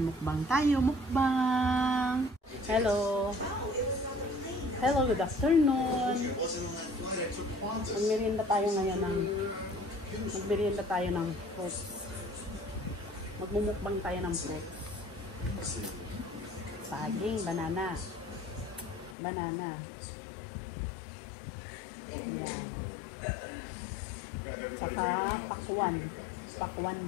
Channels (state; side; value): drops out; right; at 19.2 s